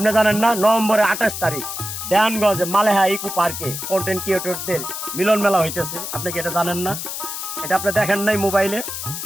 জানেন না নভেম্বরের 28 তারিখ দেয়ানগঞ্জে মালেহা ইকো পার্কে কন্টেন্ট ক্রিয়েটরদের মিলন মেলা হইতেছে? আপনি কি এটা জানেন না? এটা আপনি দেখেন নাই মোবাইলে?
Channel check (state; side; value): noise; left; hiss, 6 dB below the sound